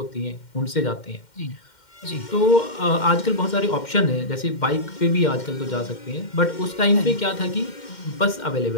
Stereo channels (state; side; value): late; right; 2.1 ms